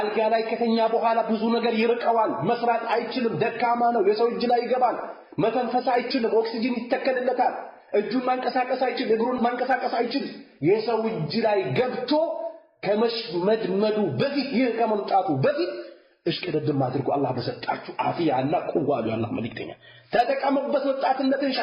ላይ ከተኛ በኋላ ብዙ ነገር ይርቀዋል፣ መስራት አይችልም፣ ደካማ ነው፣ የሰው እጅ ላይ ይገባል፣ መተንፈስ አይችልም፣ ኦክሲጅን ይተከልለታል፣ እጁን ማንቀሳቀስ አይችልም፣ እግሩን ማንቀሳቀስ አይችልም። የሰው እጅ ላይ ገብቶ ከመሽመድመዱ በፊት ይህ ከመምጣቱ በፊት እሽቅድድም አድርጉ አላህ በሰጣችሁ አፊያና ቁዋ አሉ የአላህ መልእክተኛ። ተጠቀሙበት ወጣትነትን፣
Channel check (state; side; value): identical; both; correlation 1.00